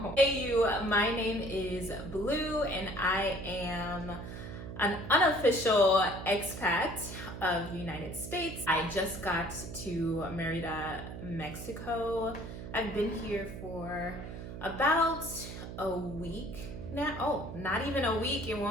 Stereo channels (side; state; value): right; noise; hum, 9 dB below the sound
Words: Hey you, my name is Blue and I am an unofficial expat of the United States. I just got to Merida, Mexico. I've been here for about a week now. Oh, not even a week. It